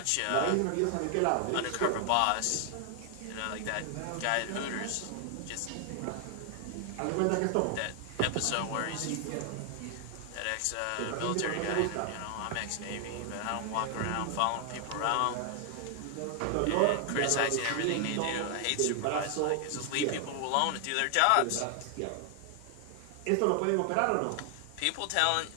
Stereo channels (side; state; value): both; different; correlation 0.00